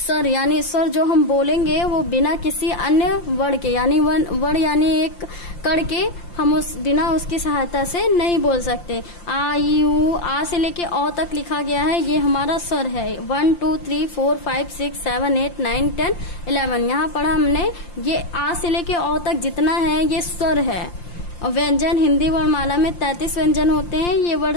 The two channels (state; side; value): late; right; 5.8 ms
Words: स्वर जो हम बोलेंगे वो बिना किसी अन्य वर्ण के, यानी वर्ण यानी एक कड़ के, हम बिना उसकी सहायता से नहीं बोल सकते। आ ई उ, आ से लेके औ तक लिखा गया है, ये हमारा स्वर है। 1 2 3 4 5 6 7 8 9 10 11, यहाँ पढ़ा हमने, ये आ से लेके औ तक जितना है ये स्वर है। और व्यंजन, हिंदी वर्णमाला में 33 व्यंजन होते हैं, ये वर्ण